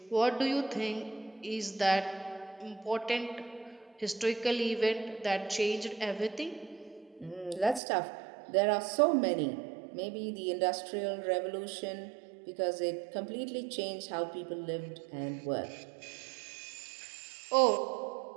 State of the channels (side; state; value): left; drops out; at 7.8 s